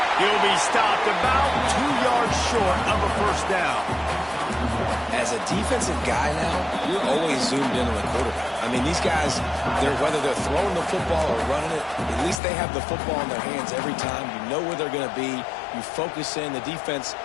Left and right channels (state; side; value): drops out; right; at 12.4 s